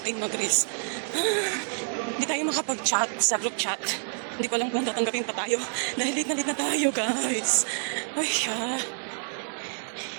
mag-risk. Hindi tayo makapag-chat sa group chat. Hindi ko alam kung tatanggapin pa tayo. Dahil late na tayo, guys. Ay,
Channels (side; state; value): left; silent; 59 dB below the other